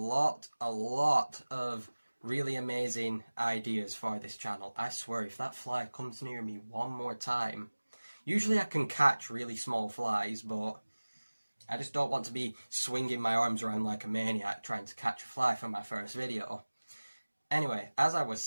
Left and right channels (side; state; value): both; inverted; correlation -1.00